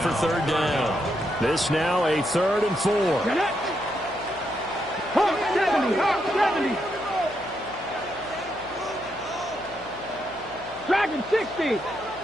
3rd down. This now a 3rd and 4. Hawk 70, Hawk 70. Dragon 60.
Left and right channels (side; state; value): left; noise; hum, 20 dB below the sound